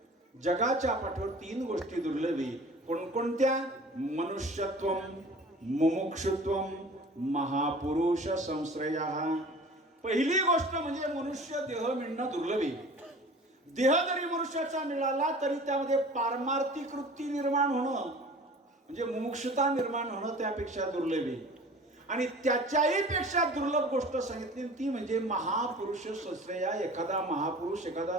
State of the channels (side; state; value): both; normal; correlation 0.43